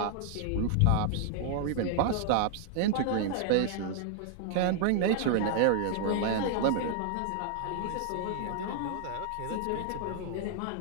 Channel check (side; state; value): both; different; correlation 0.00